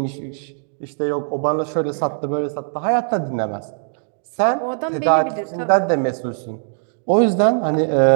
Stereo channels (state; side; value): silent; left; digital silence